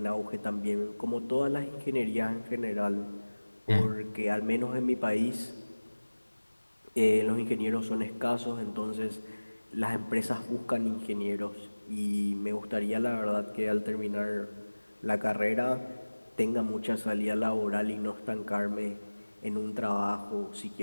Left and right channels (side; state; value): both; inverted; correlation -1.00